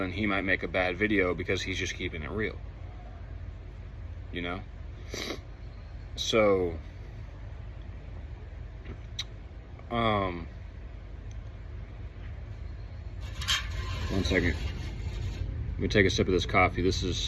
he might make a bad video because he's just keeping it real. So one second. Let me take a sip of this coffee. This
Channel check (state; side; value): identical; both; correlation 1.00